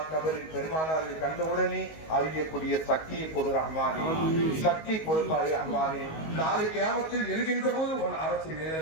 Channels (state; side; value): late; right; 19 ms